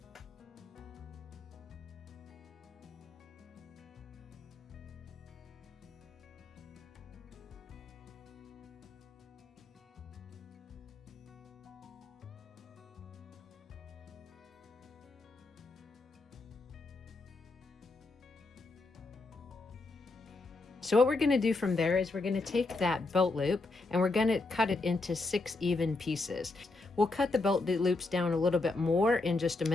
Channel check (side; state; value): right; quieter; 3.4 dB